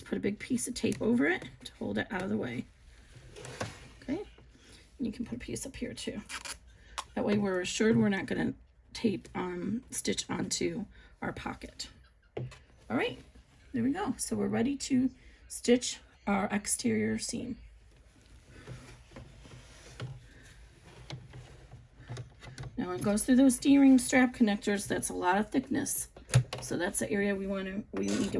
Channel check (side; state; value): both; identical; correlation 1.00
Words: put a big piece of tape over it to hold it out of the way. Okay, and you can put a piece up here too. That way we're assured we're not going to tape stitch onto our pocket. All right, there we go. So we're ready to stitch our exterior seam. Now it goes through those D-ring strap connectors. That's a lot of thickness, so that's the area we need to